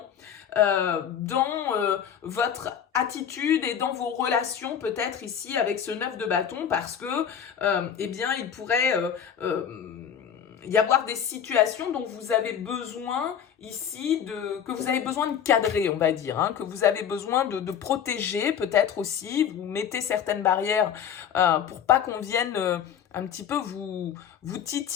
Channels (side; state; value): right; quieter; 8.5 dB